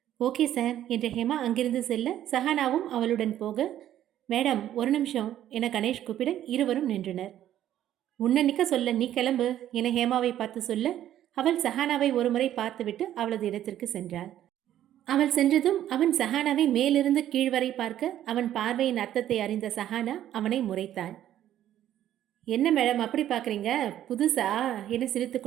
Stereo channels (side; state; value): left; quieter; 11.8 dB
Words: ஓகே சார் என்ற ஹேமா அங்கிருந்து செல்ல சஹானாவும் அவளுடன் போக, மேடம் ஒரு நிமிஷம் என கணேஷ் கூப்பிட இருவரும் நின்றனர். உன்னை நிற்க சொல்ல, நீ கிளம்பு என ஹேமாவை பார்த்து சொல்ல அவள் சஹானாவை ஒருமுறை பார்த்துவிட்டு அவளது இடத்திற்கு சென்றாள். அவள் சென்றதும் அவன் சஹானாவை மேலிருந்து கீழ் வரை பார்க்க அவன் பார்வையின் அர்த்தத்தை அறிந்த சஹானா அவனை முறைத்தாள். என்ன மேடம் அப்படி பார்க்குறீங்க, புதுசா என சிரித்து